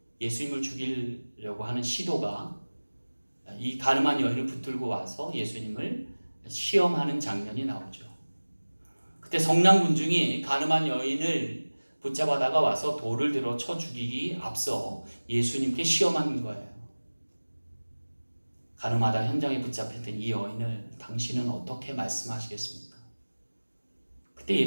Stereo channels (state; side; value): inverted; both; correlation -1.00